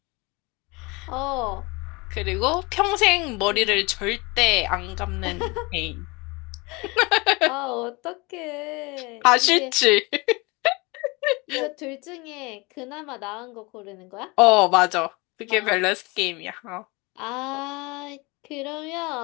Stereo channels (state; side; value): quieter; right; 26.0 dB